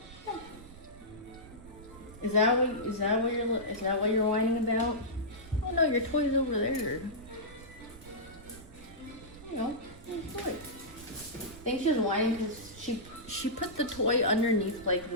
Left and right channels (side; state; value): right; noise; rumble, 18 dB below the sound